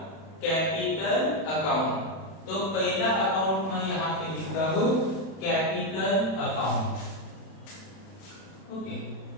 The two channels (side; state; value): right; late; 31 ms